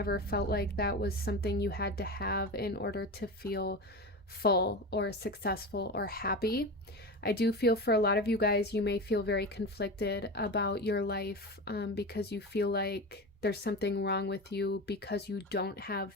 felt like that was something you had to have in order to feel full or successful or happy. I do feel for a lot of you guys, you may feel very conflicted about your life because you feel like there's something wrong with you because you don't have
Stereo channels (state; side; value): normal; both; correlation 0.25